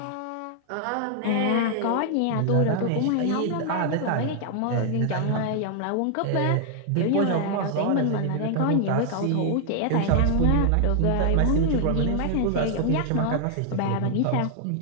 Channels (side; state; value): both; different; correlation 0.00